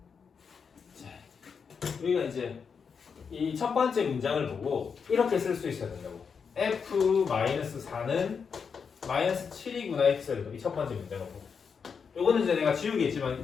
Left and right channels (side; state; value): right; quieter; 6.1 dB